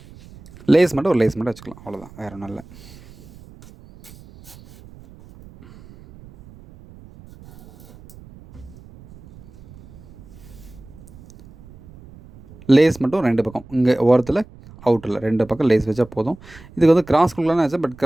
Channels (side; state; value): right; noise; rumble, 22 dB below the sound